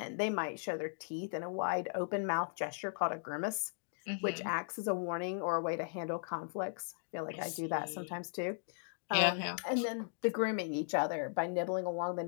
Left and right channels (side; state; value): right; silent; digital silence